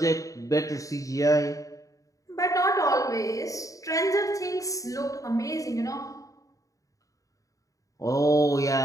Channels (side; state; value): right; late; 0.16 ms